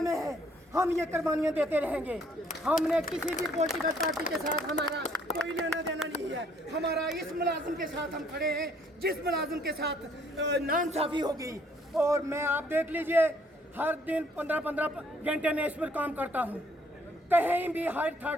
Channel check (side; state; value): both; normal; correlation 0.64